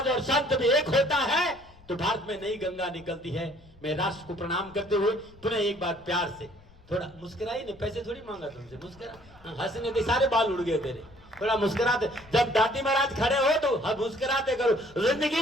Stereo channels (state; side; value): noise; left; rumble, 25 dB below the sound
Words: और संत भी एक होता है तो भारत में नई गंगा निकलती है। मैं राष्ट्र को प्रणाम करते हुए पुनः एक बार प्यार से, थोड़ा मुस्कुराई नहीं, पैसे थोड़ी मांगा तुमसे, मुस्कुरा, हंसने के सारे बाल उड़ गए तेरे, थोड़ा मुस्कुराते। जब दादी महाराज खड़े हो तो मुस्कुराते करो। जिंदगी